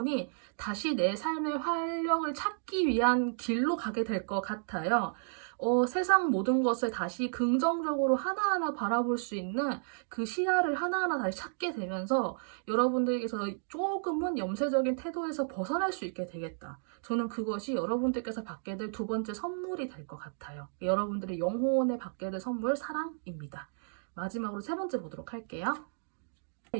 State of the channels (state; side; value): silent; left; digital silence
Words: 다시 내 삶의 활력을 찾기 위한 길로 가게 될 것 같아요. 세상 모든 것을 다시 긍정적으로 하나하나 바라볼 수 있는 그 시야를 하나하나 다시 찾게 되면서 여러분들께서 조금은 염세적인 태도에서 벗어날 수 있게 되겠다. 저는 그것이 여러분들께서 받게 될 두 번째 선물이 될 것 같아요. 여러분들의 영혼에 받게 될 선물, 사랑입니다. 마지막으로 세 번째 보도록 할게요.